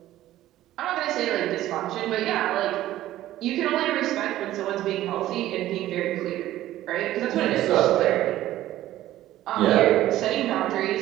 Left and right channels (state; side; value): quieter; left; 14.2 dB